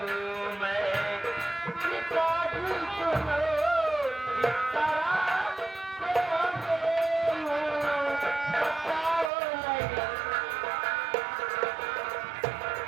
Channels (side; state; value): left; drops out; at 9.3 s